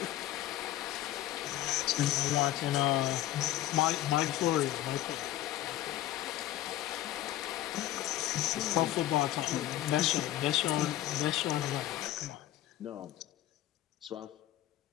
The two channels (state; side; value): quieter; right; 14.3 dB